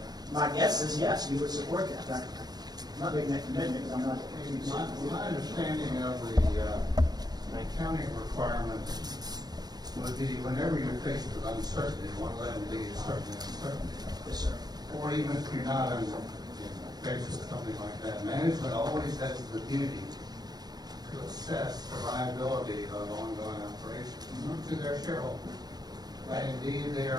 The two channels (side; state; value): left; late; 0.19 ms